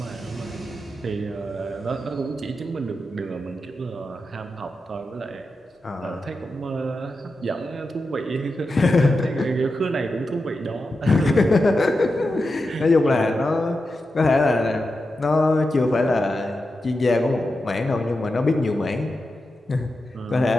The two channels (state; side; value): normal; both; correlation 0.90